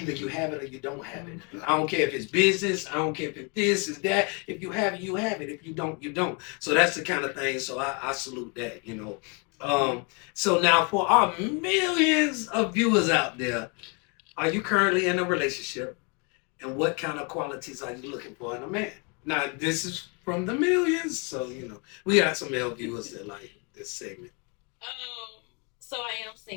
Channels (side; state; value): right; quieter; 33.6 dB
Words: you have it or you don't have it. I don't care if it's business. I don't care if it's this, is that. If you have it, you have it. If you don't, you don't. So that's the kind of thing. So I salute that, So now for our millions of viewers out there, are you currently in a relationship? And what kind of qualities are you looking for in a man? Now, this is from the millions. So, we got some male viewers that like this segment. So I am